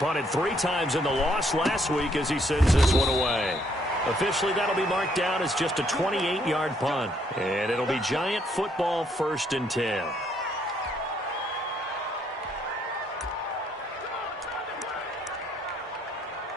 3 times in the loss last week as he sends this one away. Officially, that'll be marked down as just a 28-yard punt. And it'll be Giant football 1st and 10.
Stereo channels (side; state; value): both; normal; correlation 0.69